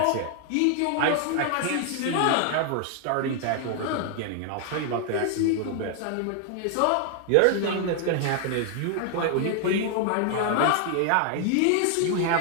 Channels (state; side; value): different; both; correlation 0.00